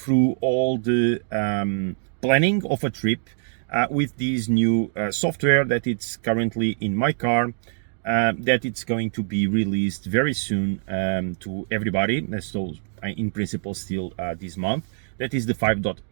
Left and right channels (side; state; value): left; silent; digital silence